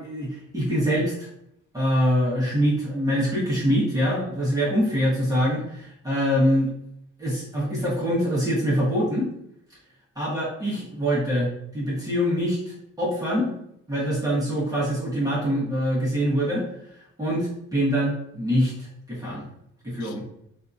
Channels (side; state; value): both; normal; correlation 0.65